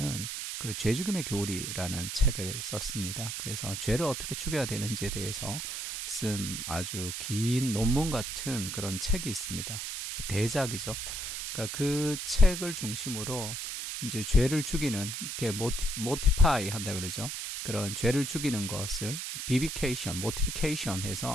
그 죄 죽임의 교리라는 책을 썼습니다. 그래서 죄를 어떻게 죽여야 되는지에 대해서 쓴 아주 긴 논문 같은 그런 책이 있습니다. 대작이죠. 그러니까 그 책을 중심으로 이제 죄를 죽이는, 이렇게 모티파이 한다 그러죠. 그런 죄를 죽이는 것을 비비케이션, 모티피케이션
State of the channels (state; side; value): noise; right; hiss, 5 dB below the sound